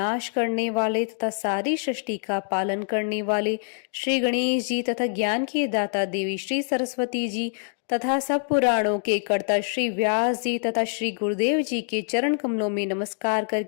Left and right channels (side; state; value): right; silent; digital silence